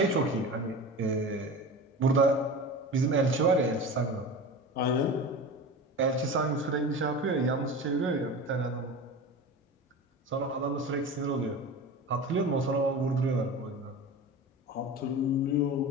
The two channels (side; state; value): both; normal; correlation 0.31